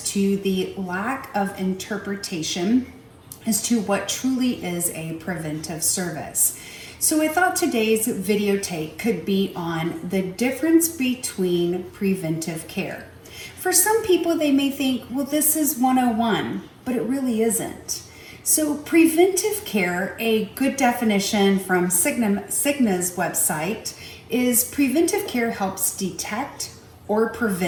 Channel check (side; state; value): both; identical; correlation 1.00